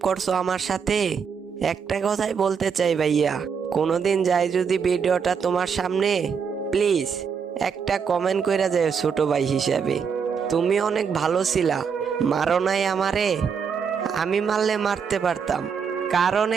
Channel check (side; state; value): left; quieter; 6.4 dB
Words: করছো আমার সাথে। একটা কথাই বলতে চাই ভাইয়া, কোনোদিন যাই যদি ভিডিওটা তোমার সামনে, প্লিজ একটা কমেন্ট কইরা যায় ছোট ভাই হিসাবে। তুমি অনেক ভালো ছিলা, মারো নাই আমারে। আমি মারলে মারতে পারতাম, কারণ